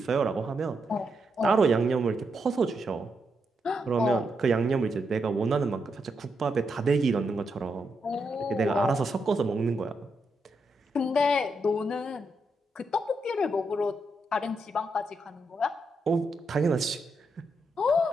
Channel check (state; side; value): normal; both; correlation 0.82